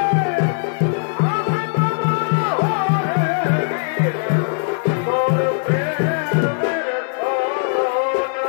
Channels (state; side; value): silent; right; digital silence